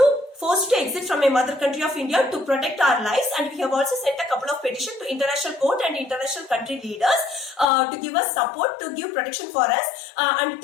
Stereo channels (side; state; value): right; drops out; at 7.7 s